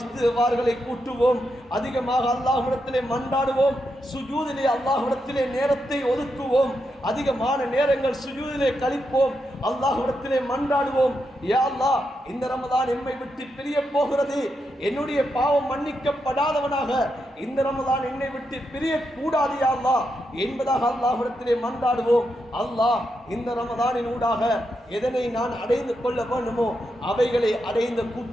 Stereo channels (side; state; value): both; normal; correlation 0.84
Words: கூட்டுவோம், அதிகமாக அல்லாஹ்விடத்திலே மன்றாடுவோம், சுஜூதிலே அல்லாஹ்விடத்திலே நேரத்தை ஒதுக்குவோம், அதிகமான நேரங்கள் சுஜூதிலே கழிப்போம், அல்லாஹ்விடத்திலே மன்றாடுவோம். யா அல்லாஹ், இந்த ரமலான் எம்மை விட்டு பிரிய போகிறது, என்னுடைய பாவம் மன்னிக்கப்படாதவனாக இந்த ரமலான் என்னை விட்டு பிரிய கூடாது யா அல்லாஹ் என்பதாக அல்லாஹ்விடத்திலே மன்றாடுவோம். அல்லாஹ் இந்த ரமலானின் ஊடாக எதனை நான் அடைந்து கொள்ள வேண்டுமோ அவைகளை அடைந்த